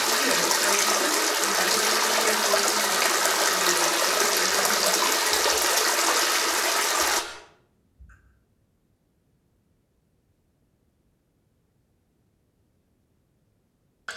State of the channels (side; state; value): both; identical; correlation 1.00